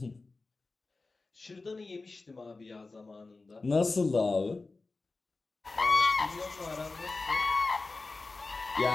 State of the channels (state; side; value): quieter; right; 3.6 dB